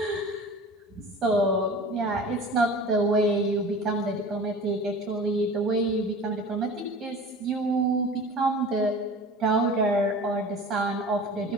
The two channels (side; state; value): both; normal; correlation 0.39